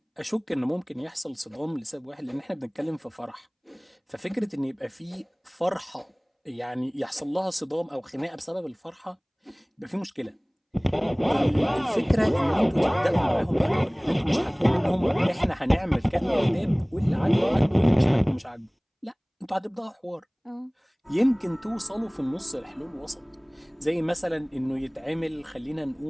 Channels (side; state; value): both; identical; correlation 1.00